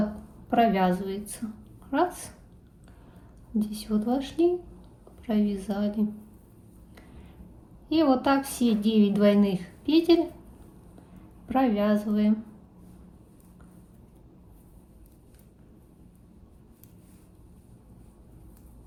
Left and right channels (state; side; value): identical; both; correlation 1.00